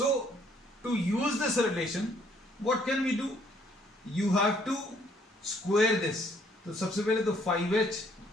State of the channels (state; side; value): normal; both; correlation 0.65